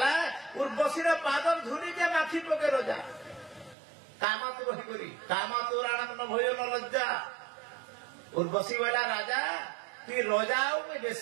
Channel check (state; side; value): drops out; left; at 3.8 s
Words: ଉର୍ବଶୀର ପାଦ ଧୂଳିକେ ମାଖି ପକେ ରଜା କାମାତୁର ହେଇକରି କାମାତୁର ଆନନ୍ଦ ଭୟ ନ ଲଜ୍ଜା ଉର୍ବଶୀ କହିଲା ରାଜା ତୁଇ ରଜା ଆଉ ମୁଇଁ